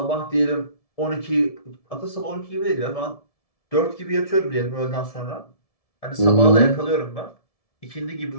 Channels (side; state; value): right; late; 1.7 ms